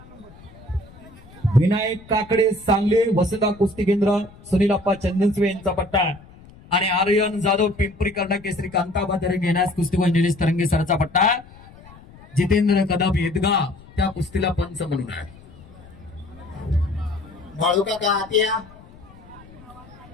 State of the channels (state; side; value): noise; left; rumble, 22 dB below the sound